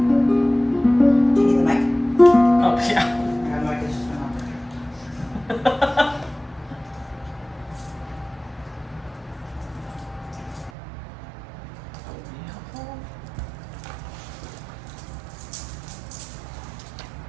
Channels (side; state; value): left; drops out; at 10.7 s